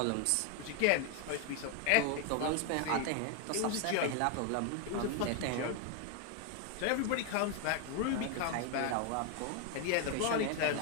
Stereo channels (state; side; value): different; both; correlation 0.01